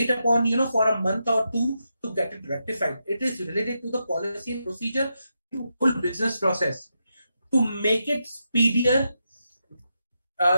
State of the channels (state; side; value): inverted; both; correlation -0.85